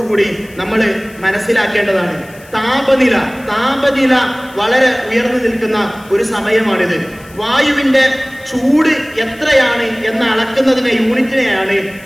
കൂടി നമ്മൾ മനസ്സിലാക്കേണ്ടതാണ്. താപനില വളരെ ഉയർന്നു നിൽക്കുന്ന ഒരു സമയമാണിത്. വായുവിന്റെ ചൂട് എത്രയാണ് എന്ന് അളക്കുന്നതിനെ യൂണിറ്റിനെയാണ്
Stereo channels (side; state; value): left; noise; hiss, 24 dB below the sound